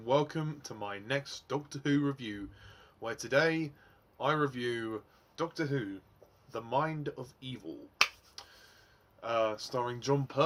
welcome to my next Doctor Who review, where today I review Doctor Who, The Mind of Evil, starring John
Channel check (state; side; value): identical; both; correlation 1.00